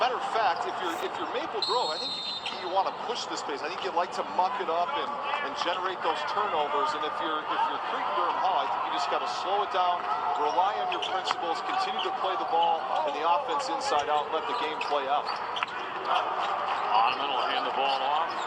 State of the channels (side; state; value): both; identical; correlation 1.00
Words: of fact, if you're Maple Grove, I think you want to push this pace. I think you'd like to muck it up and generate those turnovers. And if you're Creighton-Durham Hall, I think you just got to slow it down, rely on your principles, continue to play the ball and the offense inside out, let the game play out. Ottoman will hand the ball off.